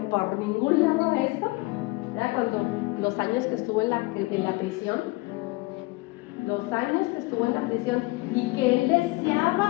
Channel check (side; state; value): right; quieter; 23.5 dB